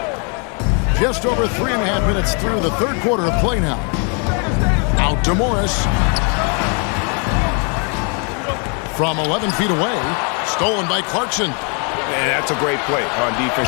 Just over 3.5 minutes through the third quarter of play now. Out to Morris. From 11 feet away. Stolen by Clarkson. And that's a great play on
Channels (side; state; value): right; quieter; 37.7 dB